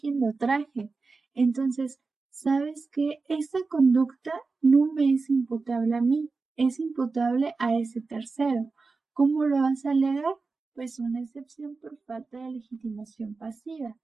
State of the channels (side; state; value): left; quieter; 4.1 dB